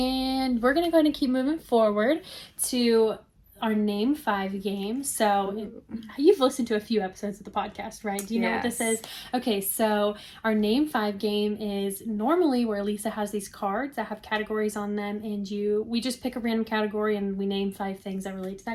we're gonna go ahead and keep moving forward to our Name 5 game. So you've listened to a few episodes of the podcast, right? Do you know what this is? Okay, so our Name 5 game is normally where Lisa has these cards that have categories on them, and we just pick a random category and we name 5 things that relate to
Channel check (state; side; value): identical; both; correlation 1.00